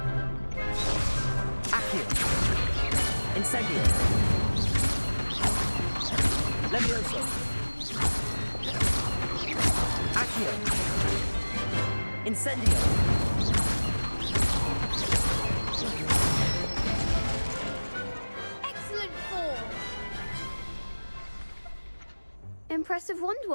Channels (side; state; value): both; inverted; correlation -1.00